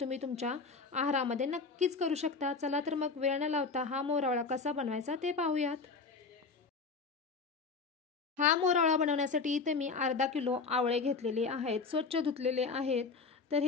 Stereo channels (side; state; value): right; quieter; 4.6 dB